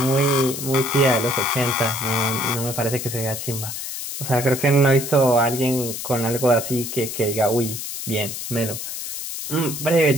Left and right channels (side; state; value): left; noise; hiss, 7 dB below the sound